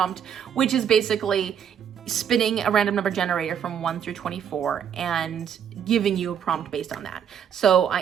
which is basically spinning a random number generator from 1 through 24 and giving you a prompt based on that. So I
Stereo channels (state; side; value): quieter; left; 8.4 dB